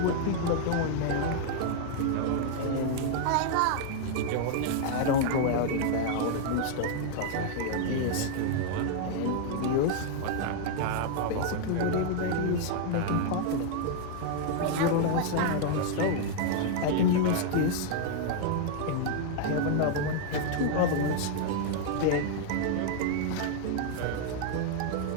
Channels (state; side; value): different; both; correlation 0.00